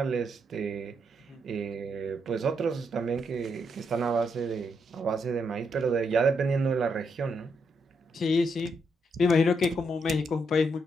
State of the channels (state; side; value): normal; both; correlation 0.78